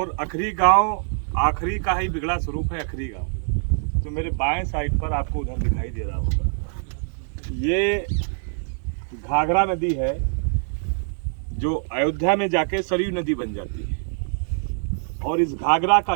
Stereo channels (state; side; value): silent; left; digital silence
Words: अखरी गांव आखरी का ही बिगड़ा स्वरूप है। अखरी गांव जो मेरे बाएं साइड पर आपको उधर दिखाई दे रहा होगा, ये घाघरा नदी है जो अयोध्या में जाके सरयू नदी बन जाती है। और इस घाघरा का